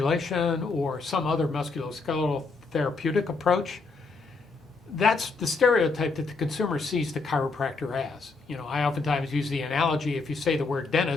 or some other musculoskeletal therapeutic approach. That's the stereotype that the consumer sees the chiropractor as. I oftentimes use the analogy, if you say the word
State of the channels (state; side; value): quieter; right; 4.1 dB